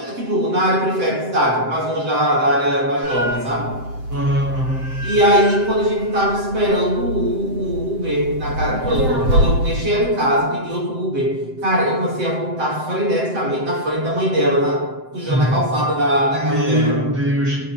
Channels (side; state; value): left; late; 7.7 ms